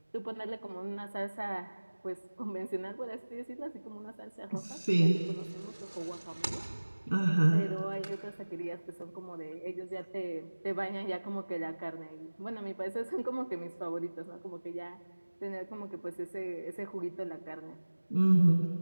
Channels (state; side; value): inverted; both; correlation -1.00